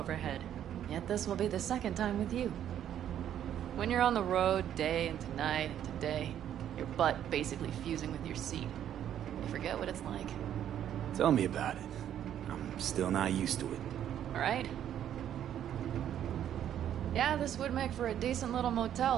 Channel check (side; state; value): left; quieter; 10.4 dB